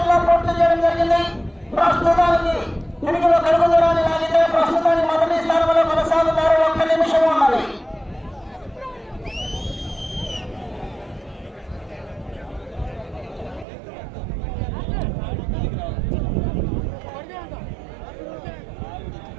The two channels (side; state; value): left; drops out; at 13.7 s